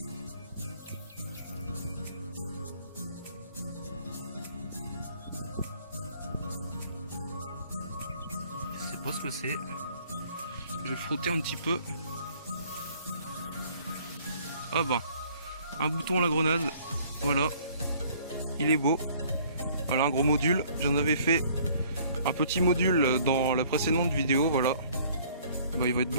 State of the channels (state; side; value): inverted; both; correlation -0.57